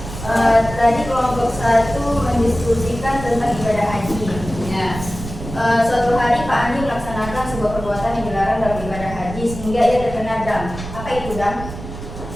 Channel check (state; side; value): noise; right; rumble, 10 dB below the sound